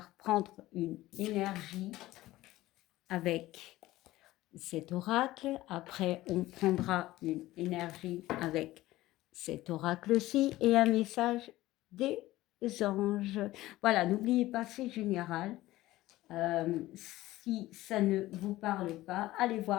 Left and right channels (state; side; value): quieter; right; 16.8 dB